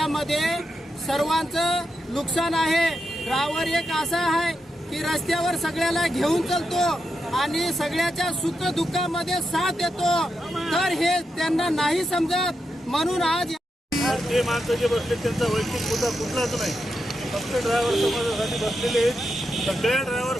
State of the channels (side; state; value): both; normal; correlation 0.85